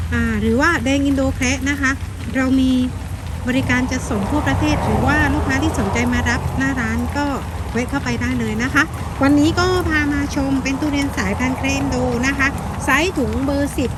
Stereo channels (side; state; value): both; identical; correlation 1.00